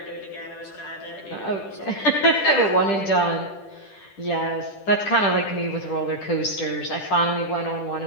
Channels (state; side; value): late; right; 10 ms